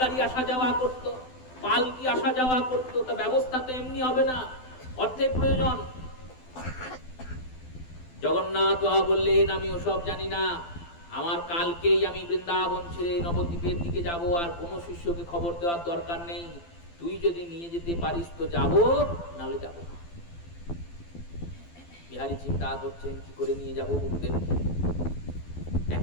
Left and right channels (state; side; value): late; right; 12 ms